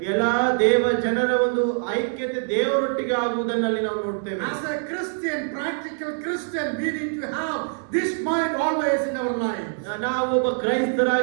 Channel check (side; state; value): left; silent; digital silence